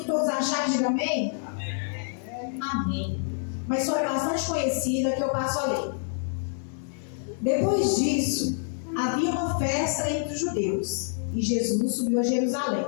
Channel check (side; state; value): right; silent; digital silence